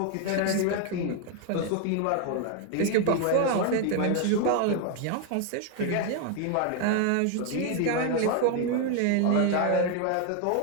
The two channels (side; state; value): both; different; correlation 0.01